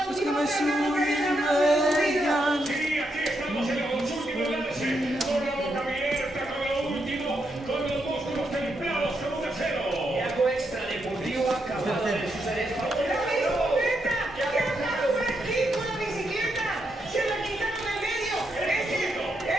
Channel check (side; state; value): both; normal; correlation 0.81